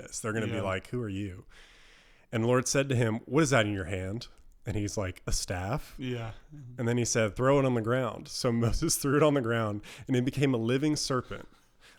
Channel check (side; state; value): both; identical; correlation 1.00